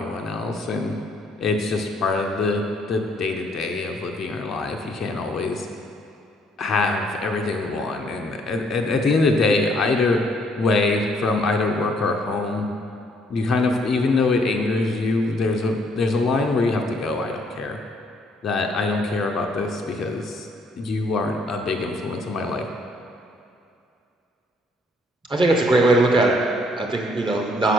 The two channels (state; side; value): normal; both; correlation 0.66